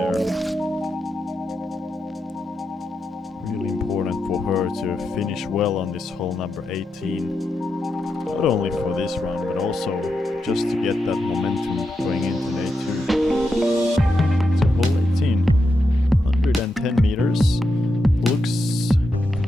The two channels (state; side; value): normal; both; correlation 0.86